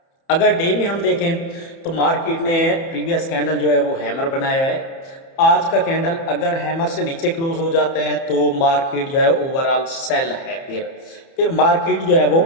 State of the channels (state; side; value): late; right; 30 ms